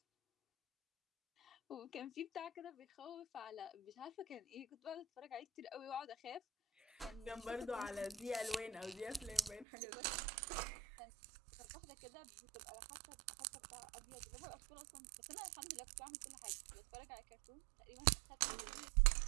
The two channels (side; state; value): left; drops out; at 9.7 s